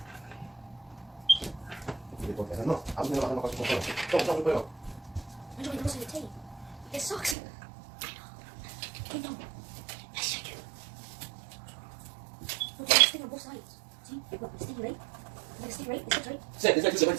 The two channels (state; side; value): drops out; left; at 7.4 s